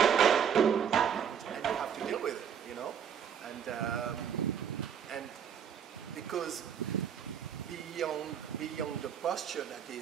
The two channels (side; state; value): left; quieter; 8.1 dB